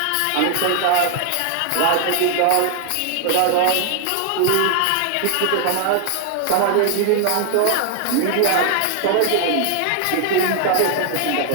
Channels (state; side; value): different; both; correlation 0.00